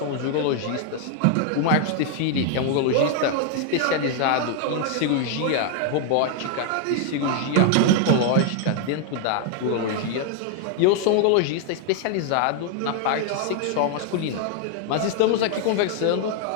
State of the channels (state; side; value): different; both; correlation 0.00